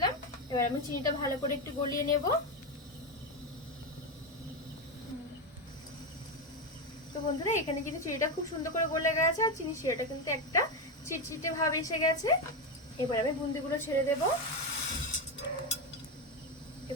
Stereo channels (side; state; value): both; normal; correlation 0.11